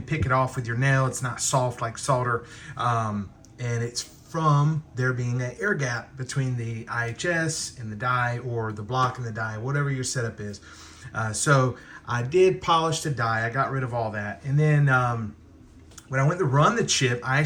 pick it off with your nail. It's not soft like solder. And it's from there being an air gap between the IHS and the die, or the block and the die, whatever your setup is. So I did polish the die. I got rid of all that. And then when I went to run the chip, I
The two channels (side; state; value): both; identical; correlation 1.00